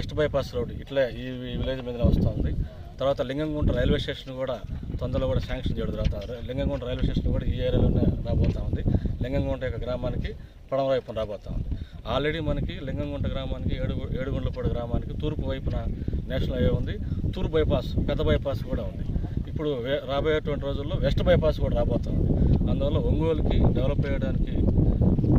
బైపాస్ రోడ్ ఇట్లా ఈ విలేజ్ మీద వస్తుంది. తర్వాత లింగంగుంట రైల్వే స్టేషన్ కూడా తొందరలో కూడా శాంక్షన్ చేయడం జరుగుతుంది. లింగంగుంట రైల్వే స్టేషన్ కూడా ఈ ఏరియాలోనే రాబోతూ ఉంది. లింగంగుంట యొక్క గ్రామానికి పడమ వైపున రాబోతూ ఉంది. ఆల్రెడీ మనకి లింగంగుంట గ్రామానికి, ఏడుగుండ్లపాడు గ్రామానికి తూర్పు వైపున నేషనల్ హైవే ఉంది. తూర్పు బైపాస్, పెద్ద బైపాస్ కూడా ఉంది. ఇప్పుడు రాబోయేటువంటి రోజుల్లో వెస్ట్ బైపాస్ కూడా రాబోతుంది. అందువల్ల ఒంగోలుకి డెవలప్ చేయడానికి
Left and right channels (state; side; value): identical; both; correlation 1.00